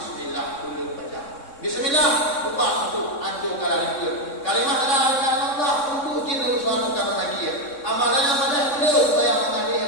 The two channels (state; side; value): late; right; 3.6 ms